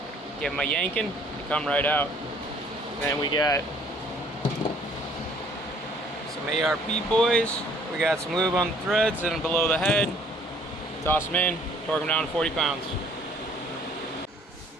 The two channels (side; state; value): both; normal; correlation 0.59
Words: give them a yanking, they come right out. And then we got some ARP boys. We got some lube on the threads and below the head. Toss them in, torque them down to 40 pounds.